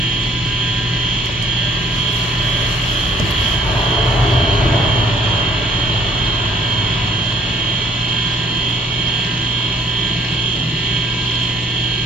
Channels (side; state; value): both; normal; correlation 0.59